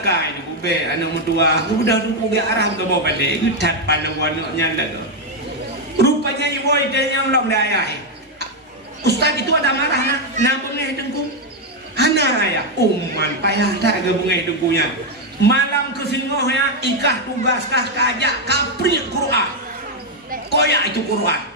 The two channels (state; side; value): normal; both; correlation 0.03